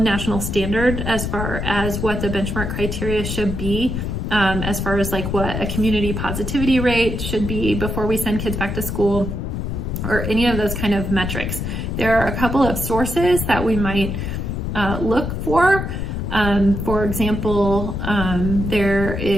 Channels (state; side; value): noise; left; rumble, 3 dB below the sound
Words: standard as far as what the benchmark criteria should be. As far as like what a community positivity rate should be before we send kids back to school, or any of those kind of metrics. There are a couple of sources that we might look for. For example, there